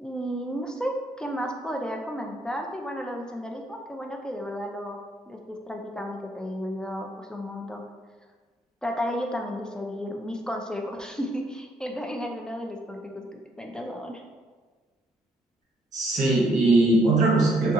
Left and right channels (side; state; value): both; normal; correlation 0.70